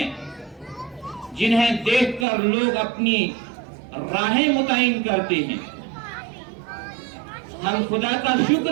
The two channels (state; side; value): drops out; left; at 2.2 s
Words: जिन्हें देखकर लोग अपनी राहें मुतय्यन करते हैं। हम खुदा का